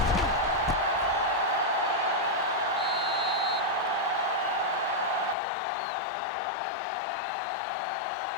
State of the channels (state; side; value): drops out; right; at 5.4 s